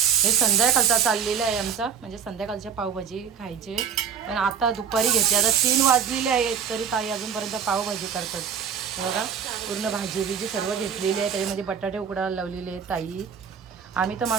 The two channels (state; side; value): quieter; left; 7.2 dB